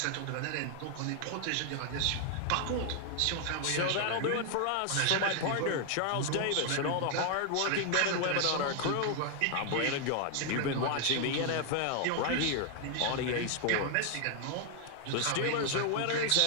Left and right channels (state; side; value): different; both; correlation 0.00